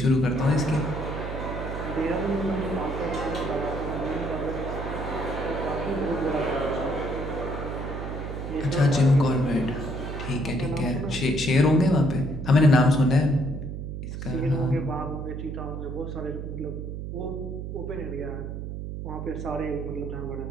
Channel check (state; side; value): noise; right; hum, 6 dB below the sound